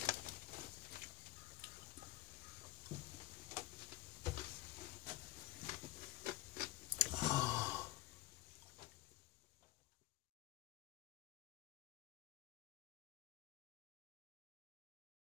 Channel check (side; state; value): right; quieter; 16.3 dB